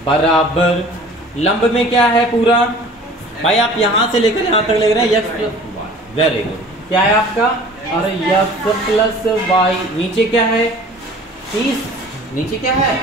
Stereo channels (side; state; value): both; normal; correlation 0.46